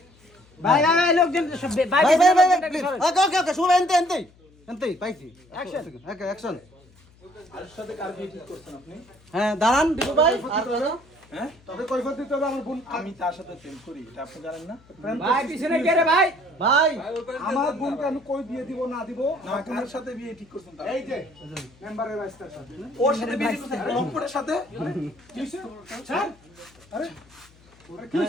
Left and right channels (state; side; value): noise; left; hum, 28 dB below the sound